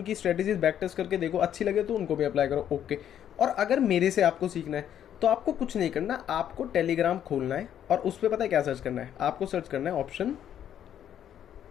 स्ट्रेटेजीज बैक टेस्ट करके देखो, अच्छी लगे तो उनको भी अप्लाई करो, ओके। और अगर मेरे से आपको सीखना है तो आपको कुछ नहीं करना, आपको टेलीग्राम खोलना है और उस पर पता है क्या सर्च करना है, आपको सर्च करना है ऑप्शन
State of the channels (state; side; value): quieter; right; 10.0 dB